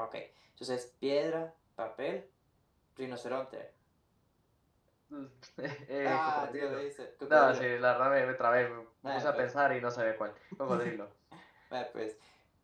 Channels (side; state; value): both; identical; correlation 1.00